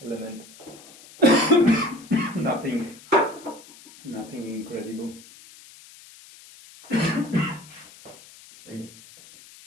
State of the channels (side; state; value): left; noise; hiss, 21 dB below the sound